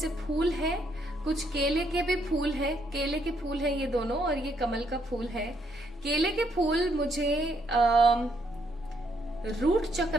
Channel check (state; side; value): normal; both; correlation 0.72